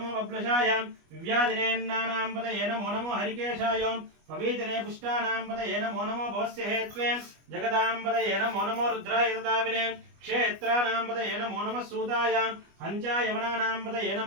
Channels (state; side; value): late; left; 25 ms